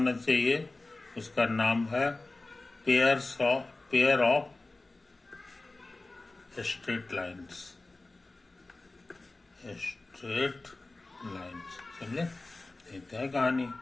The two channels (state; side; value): quieter; right; 3.1 dB